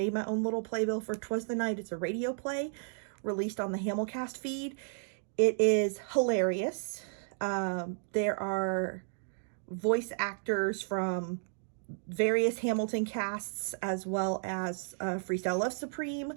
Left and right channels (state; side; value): silent; left; digital silence